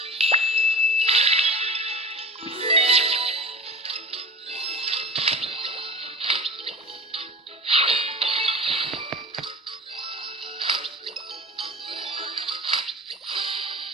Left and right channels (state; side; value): normal; both; correlation 0.35